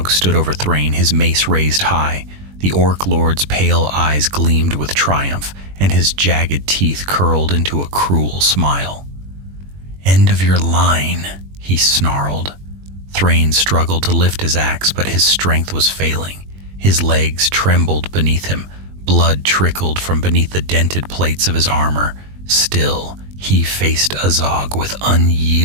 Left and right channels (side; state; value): left; late; 21 ms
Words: stood over Thrain, his mace raised high. The Orc Lord's pale eyes gleamed with triumph, and his jagged teeth curled into a cruel smile. "End of your line," he snarled. Thrain struggled to lift his axe, but his strength was failing. His legs trembled beneath him. Blood trickled from beneath the dented plates of his armor. Still, he faced Azog with